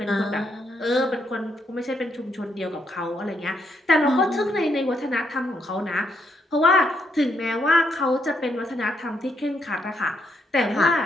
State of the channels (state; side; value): normal; both; correlation 0.76